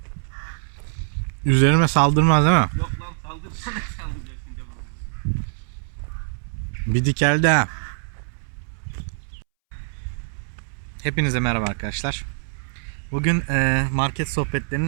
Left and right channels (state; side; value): silent; left; 63 dB below the other